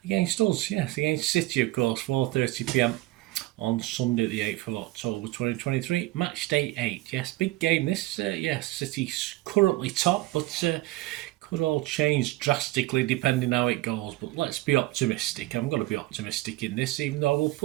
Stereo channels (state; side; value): quieter; left; 18.2 dB